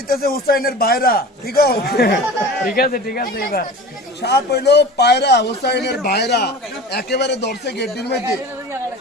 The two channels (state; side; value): normal; both; correlation 0.36